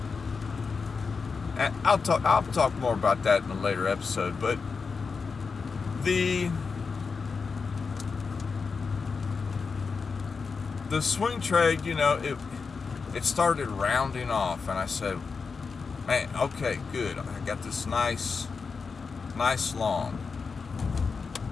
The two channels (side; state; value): right; quieter; 5.0 dB